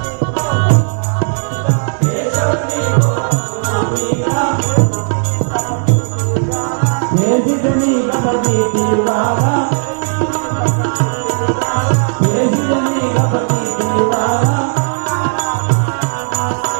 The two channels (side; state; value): left; silent; 62 dB below the other